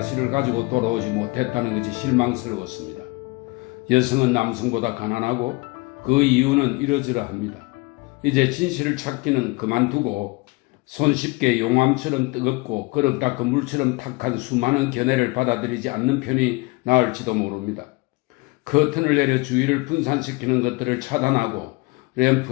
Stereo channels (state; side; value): quieter; right; 25.4 dB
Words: 가지고 돌아오지 못했다는 것이 실망스러웠습니다. 여성은 남성보다 가난하고 그 이유는 이러저러합니다. 이제 진실을 찾기는 그만두고 손쉽게 용암처럼 뜨겁고 그릇 닦은 물처럼 탁한 수많은 견해를 받아들이지 않는 편이 나을지도 모릅니다. 커튼을 내려 주위를 분산시키는 것들을 차단하고